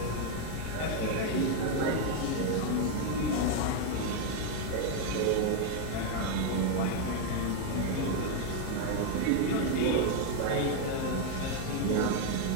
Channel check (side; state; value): both; different; correlation 0.01